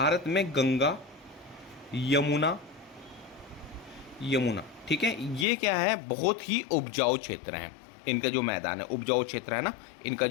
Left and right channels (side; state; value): right; drops out; at 5.5 s